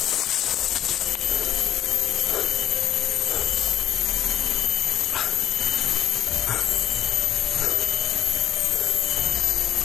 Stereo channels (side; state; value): right; quieter; 11.1 dB